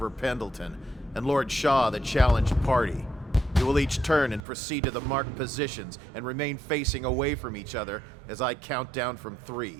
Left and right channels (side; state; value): left; drops out; at 4.4 s